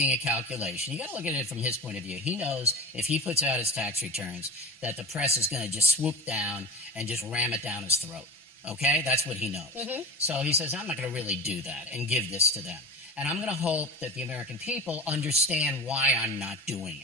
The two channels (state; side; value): normal; both; correlation 0.30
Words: a calculation. You got to look at it from his point of view. He knows if he puts out his tax returns that the press is going to just swoop down and just ram it down his throat. Okay? That's what he knows. So he says, I'm not going to really do that and give this to them. And I'm going to hope that the American people understand why I'm not doing